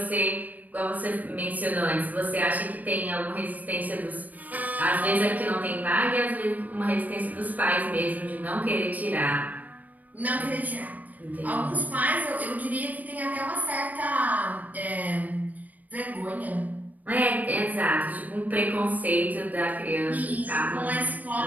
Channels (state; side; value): late; left; 0.079 ms